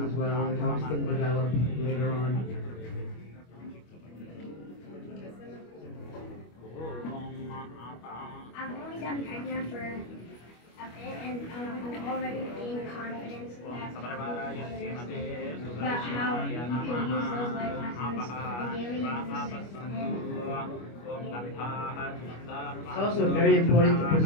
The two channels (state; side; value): late; right; 25 ms